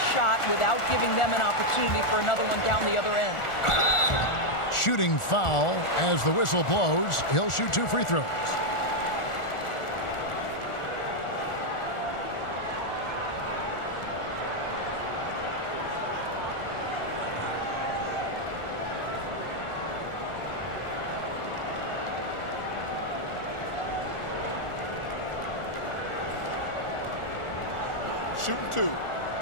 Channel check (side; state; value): right; late; 1.4 ms